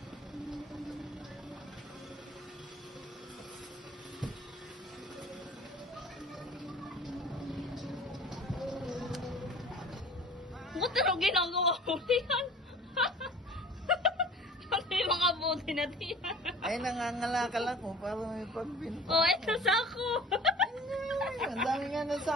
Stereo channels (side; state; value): both; normal; correlation 0.44